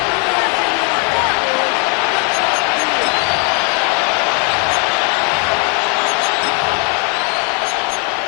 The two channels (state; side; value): quieter; right; 37.4 dB